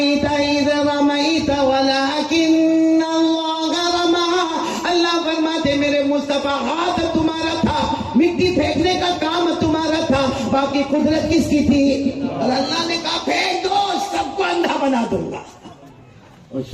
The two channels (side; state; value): both; identical; correlation 1.00